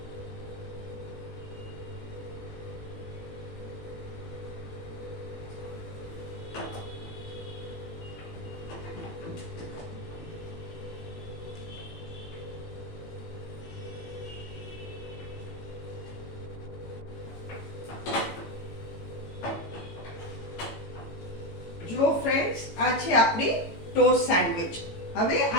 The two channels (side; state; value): right; late; 18 ms